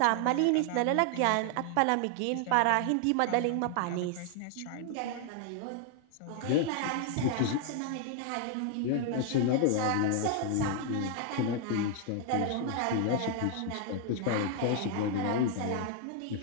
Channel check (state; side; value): different; both; correlation 0.00